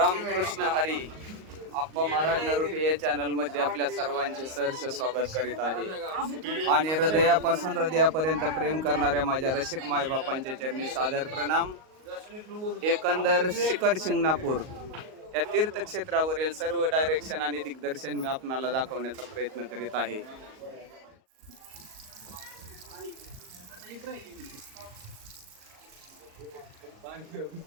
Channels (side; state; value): left; late; 38 ms